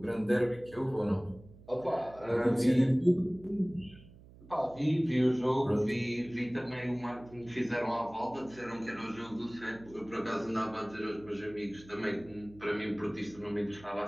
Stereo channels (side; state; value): right; noise; hum, 21 dB below the sound